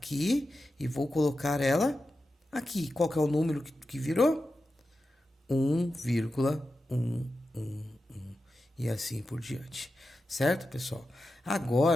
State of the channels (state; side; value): normal; both; correlation 0.91